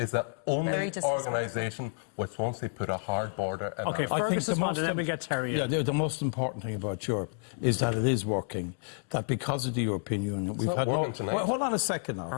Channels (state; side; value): silent; right; digital silence